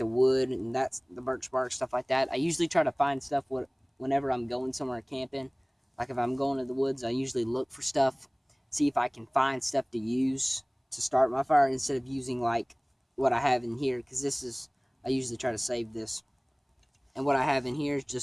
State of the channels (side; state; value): both; identical; correlation 1.00